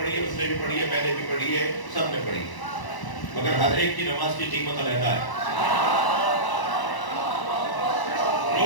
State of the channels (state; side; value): late; right; 1.0 ms